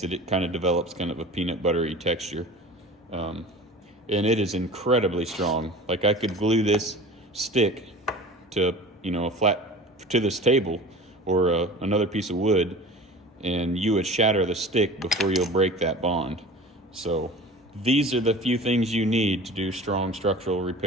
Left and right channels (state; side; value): normal; both; correlation 0.38